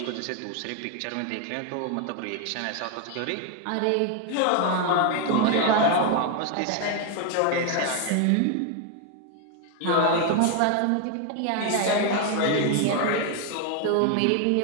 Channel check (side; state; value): both; different; correlation 0.01